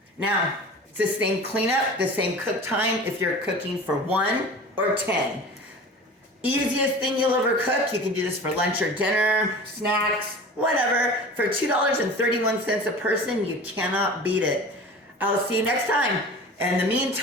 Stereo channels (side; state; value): both; normal; correlation 0.38